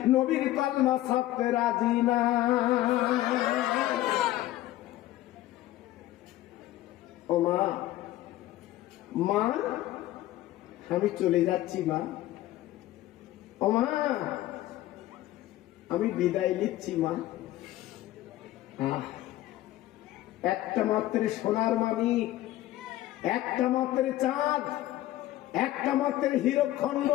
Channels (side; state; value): right; quieter; 15.2 dB